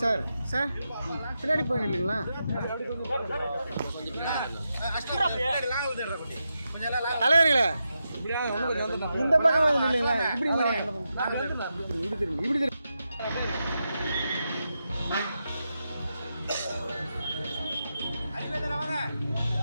சார். சார் பின்னாடி போய் நில்லுங்களா? தலைவர்களே இந்த பக்கம் நில்லுங்களா? இப்படி இப்படி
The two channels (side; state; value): both; inverted; correlation -0.87